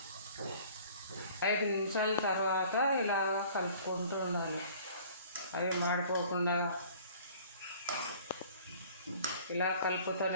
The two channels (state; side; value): inverted; both; correlation -0.50